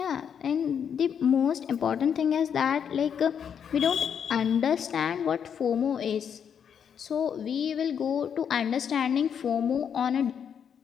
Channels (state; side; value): quieter; right; 7.8 dB